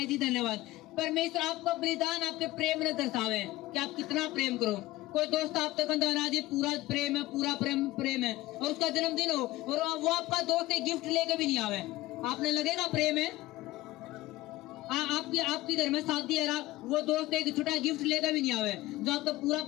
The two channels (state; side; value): quieter; right; 17.8 dB